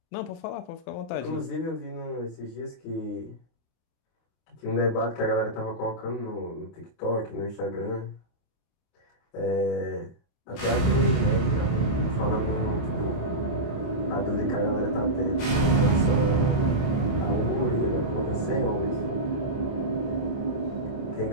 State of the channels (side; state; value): right; late; 29 ms